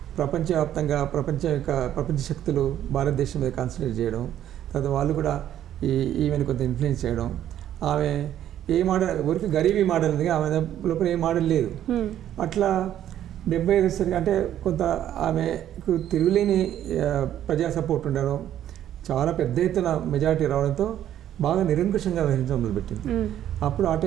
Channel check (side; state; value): left; quieter; 11.3 dB